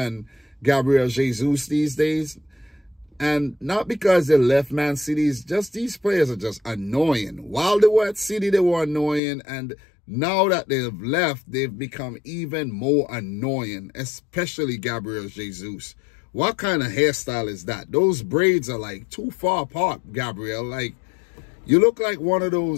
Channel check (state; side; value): drops out; right; at 9.2 s